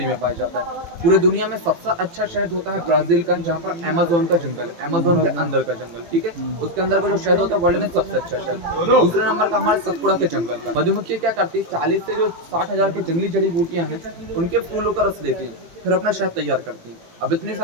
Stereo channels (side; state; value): left; late; 18 ms